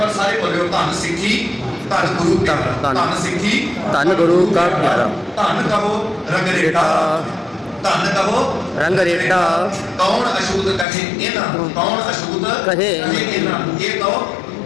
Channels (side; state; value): right; drops out; at 10.9 s